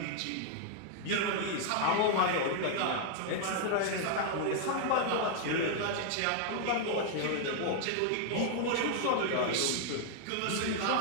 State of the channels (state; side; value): different; both; correlation -0.01